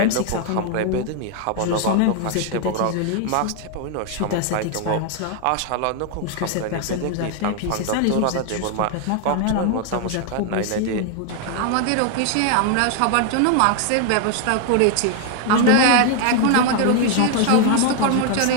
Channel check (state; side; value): different; both; correlation 0.00